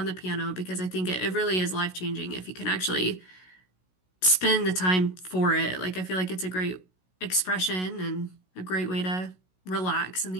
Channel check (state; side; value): late; right; 16 ms